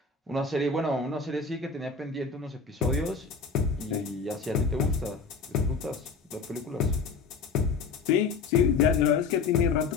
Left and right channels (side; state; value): right; quieter; 4.8 dB